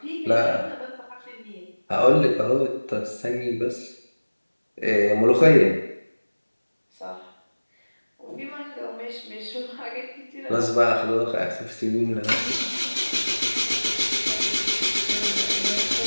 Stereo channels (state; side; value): inverted; both; correlation -1.00